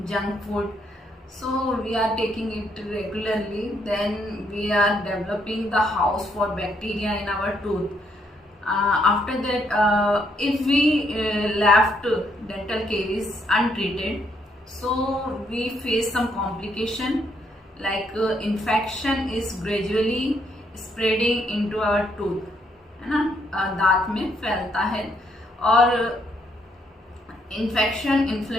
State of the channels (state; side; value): normal; both; correlation 0.73